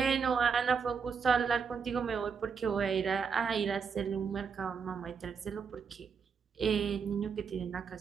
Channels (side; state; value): left; quieter; 6.0 dB